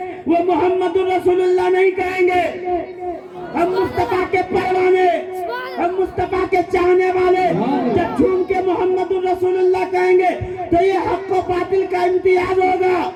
وہ محمد الرسول اللہ نہیں کہیں گے۔ ہم مصطفیٰ کے پروانے، ہم مصطفیٰ کے چاہنے والے جب جھوم کے محمد الرسول اللہ کہیں گے تو یہ حق و باطل کا امتیاز ہوگا۔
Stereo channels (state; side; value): identical; both; correlation 1.00